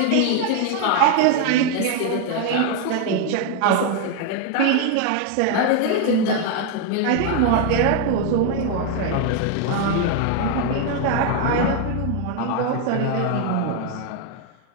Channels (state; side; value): different; both; correlation 0.00